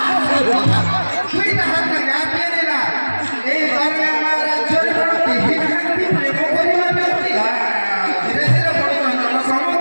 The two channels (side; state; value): both; inverted; correlation -1.00